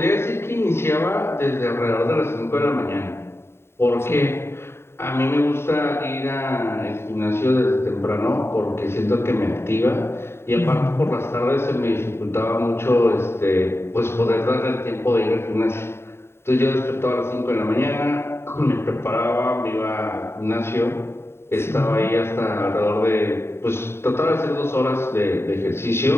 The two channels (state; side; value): late; right; 0.12 ms